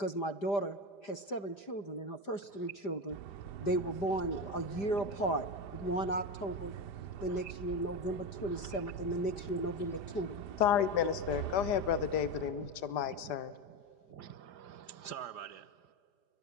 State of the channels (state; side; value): late; right; 5.0 ms